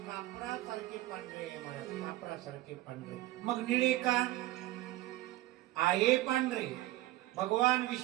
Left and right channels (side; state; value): left; quieter; 16.8 dB